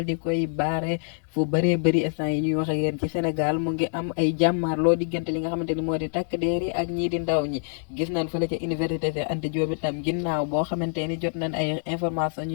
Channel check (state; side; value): silent; right; digital silence